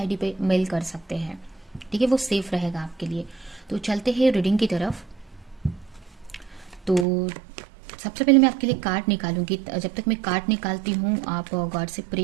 पे मेल कर सकते हैं। ठीक है, वो सेफ रहेगा आपके लिए। तो चलते हैं रीडिंग की तरफ। तो सबसे पहले मैं आपके लिए कार्ड निकालूंगी। जब तक मैं कार्ड निकालती हूँ आप गॉड से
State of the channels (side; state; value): left; drops out; at 7.1 s